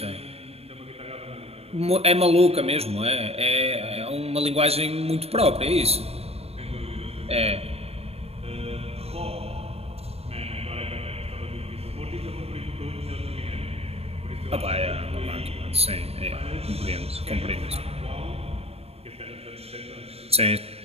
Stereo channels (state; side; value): late; left; 0.29 ms